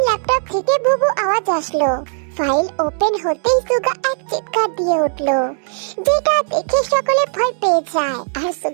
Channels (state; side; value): silent; left; 68 dB below the other